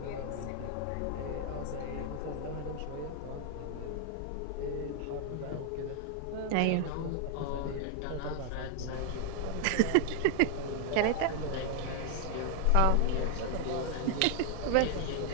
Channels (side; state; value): both; different; correlation 0.00